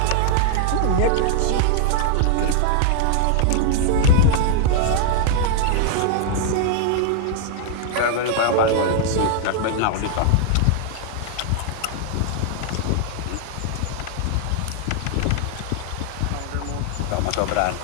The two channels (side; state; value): both; different; correlation 0.00